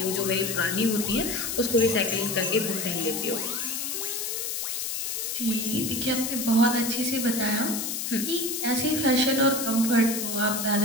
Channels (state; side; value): noise; left; hiss, 3 dB below the sound